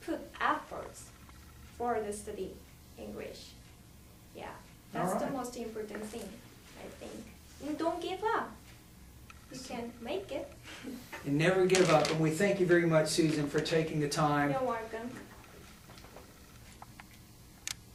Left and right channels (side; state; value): both; identical; correlation 1.00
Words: put efforts for the study English. Yeah, that's the most important thing, I think. And don't give up. You can make it. And never give up. And we thank you very much, Susan, for taking the time. You're welcome.